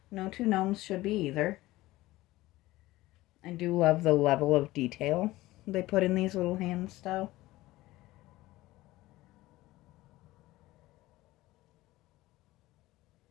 two gnomes should be either. I do love the level of detail they put in these little hands, though.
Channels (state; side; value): quieter; right; 17.8 dB